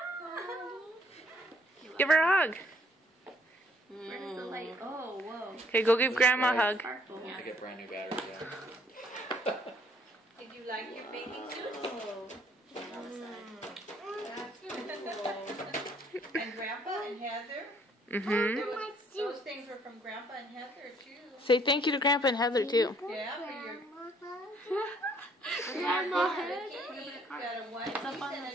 Give her a hug. Where does the light? Oh, whoa. Okay, go give Grandma a hug. Sparkle. I get brand new batteries. Yeah. Did you like your bathing suit? That's cool. And Grandpa and Heather, Mm-hmm. those things were from Grandpa and Heather too. Say thank you to Grandpa and Heather too. Yeah, for your Grandma cake. Got a one It's up piece on and the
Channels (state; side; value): normal; both; correlation 0.64